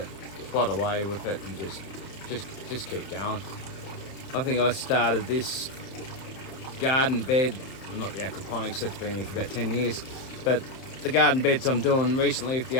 plod away with it and just keep going. I think I started this garden bed, not the aquaponics, that's been here for about 10 years, but the garden beds I'm doing recently with the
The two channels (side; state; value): right; late; 30 ms